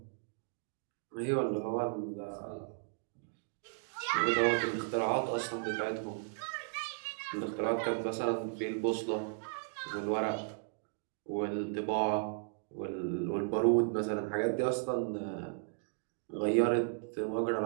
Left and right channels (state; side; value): silent; left; digital silence